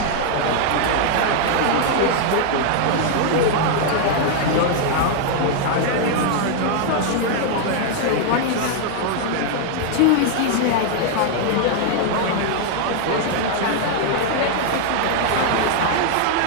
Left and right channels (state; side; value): different; both; correlation 0.00